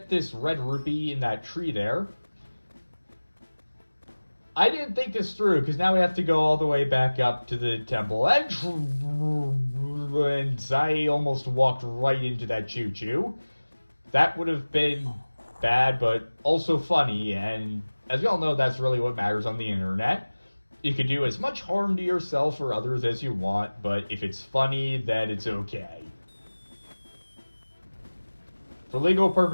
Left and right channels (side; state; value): both; inverted; correlation -1.00